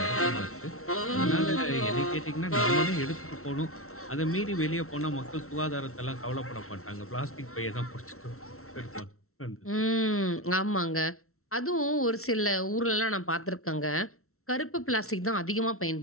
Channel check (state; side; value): late; right; 0.63 ms